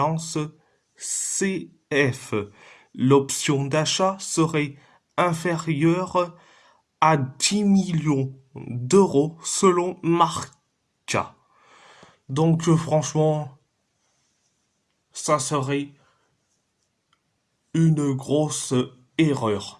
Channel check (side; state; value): both; identical; correlation 1.00